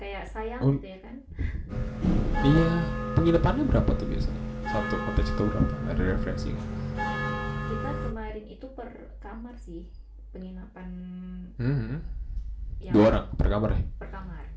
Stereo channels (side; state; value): both; identical; correlation 1.00